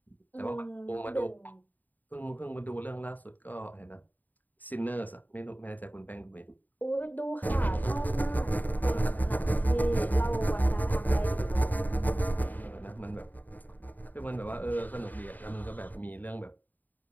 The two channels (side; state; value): right; late; 0.084 ms